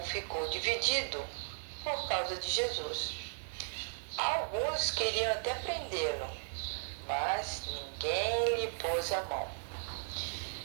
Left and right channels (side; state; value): left; silent; digital silence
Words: ficou dividido por causa de Jesus. Alguns queriam até prendê-lo, mas ninguém lhe pôs a mão.